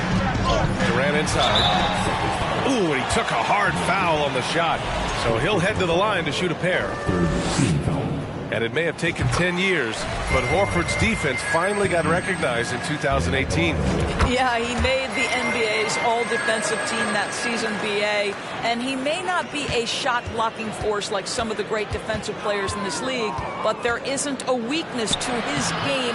Durant inside. Ooh, and he took a hard foul on the shot. So he'll head to the line to shoot a pair. And it may have taken 10 years, but Horford's defense finally got recognized in 2018. Yeah, he made the NBA's all-defensive team that season, BA, and he may not be a shot-blocking force like some of the great defensive players in this league, but there isn't a weakness to his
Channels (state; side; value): identical; both; correlation 1.00